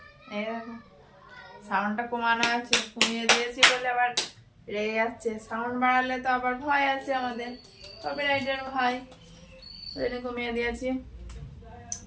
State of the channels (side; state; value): both; identical; correlation 1.00